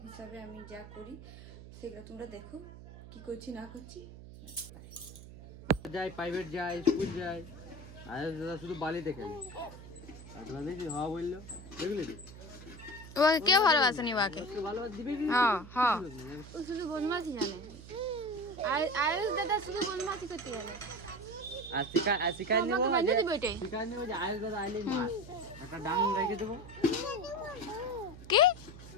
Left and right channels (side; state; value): right; noise; hum, 15 dB below the sound